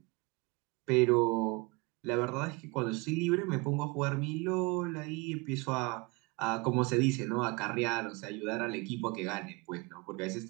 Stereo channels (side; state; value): left; quieter; 26.9 dB